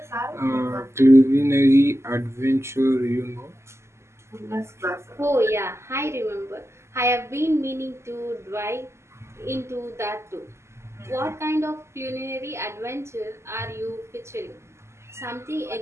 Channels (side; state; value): left; late; 0.13 ms